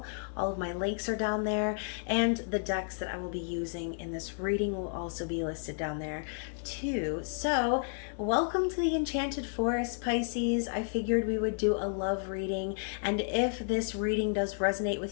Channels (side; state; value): right; silent; digital silence